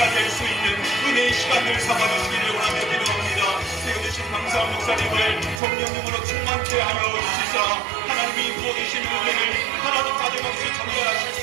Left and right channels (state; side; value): drops out; left; at 5.6 s